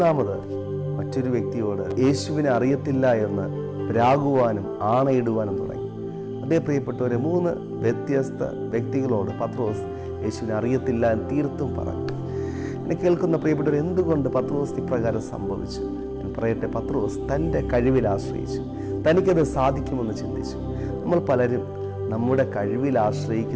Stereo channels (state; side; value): identical; both; correlation 1.00